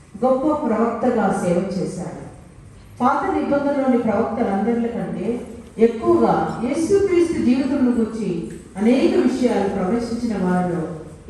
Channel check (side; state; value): both; identical; correlation 1.00